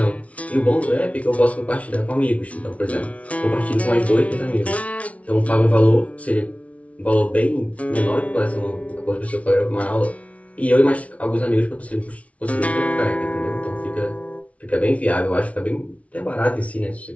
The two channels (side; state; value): right; late; 0.065 ms